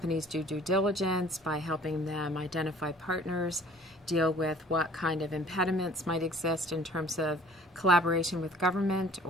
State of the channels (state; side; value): normal; both; correlation 0.52